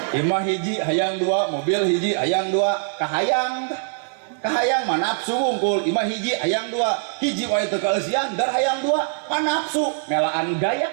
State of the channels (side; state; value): left; silent; digital silence